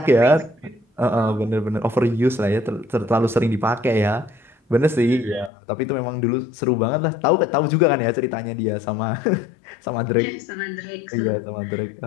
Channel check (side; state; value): right; drops out; at 5.5 s